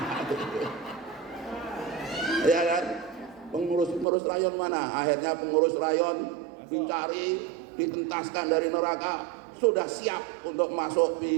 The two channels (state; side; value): drops out; left; at 4.0 s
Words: Ya kan? Pengurus-pengurus rayon mana? Akhirnya pengurus rayon dicari, ditentaskan dari neraka, sudah siap untuk masuk